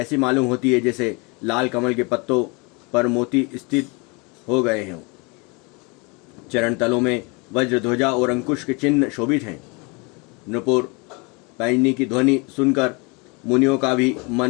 मालूम होती है जैसे लाल कमल के पत्तों पर मोती स्थित हो गए हों। चरण तलों में वज्र ध्वजा और अंकुश के चिन्ह शोभित हैं। नुपुर पैंजनी की ध्वनि सुनकर मुनियों का भी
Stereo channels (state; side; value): quieter; right; 29.6 dB